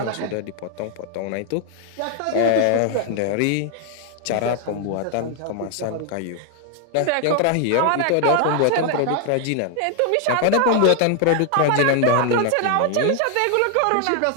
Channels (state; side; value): different; both; correlation 0.00